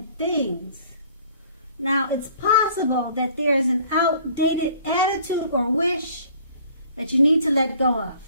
things. Now, it's possible that there is an outdated attitude or wish that you need to let go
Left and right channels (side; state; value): both; inverted; correlation -0.54